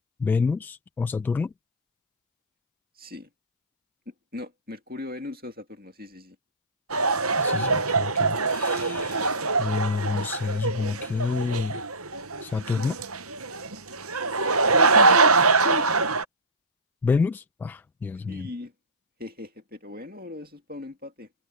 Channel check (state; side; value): normal; both; correlation -0.20